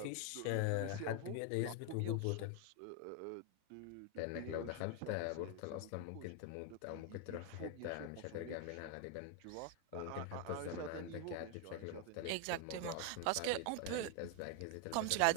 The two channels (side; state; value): both; different; correlation 0.01